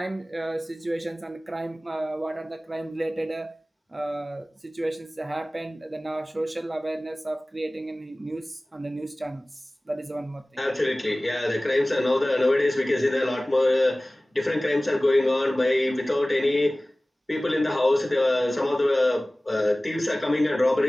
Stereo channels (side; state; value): both; normal; correlation 0.98